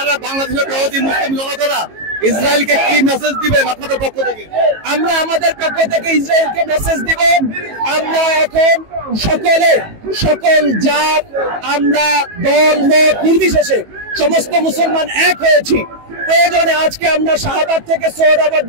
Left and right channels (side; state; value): left; late; 18 ms